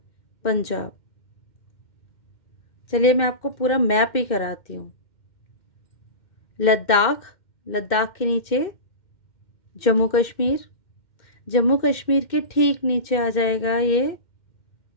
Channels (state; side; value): late; right; 2.1 ms